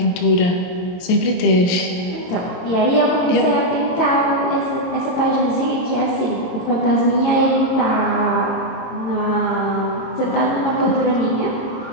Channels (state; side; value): late; right; 23 ms